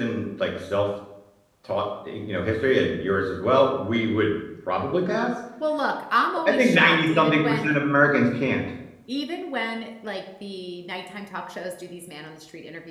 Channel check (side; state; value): both; identical; correlation 1.00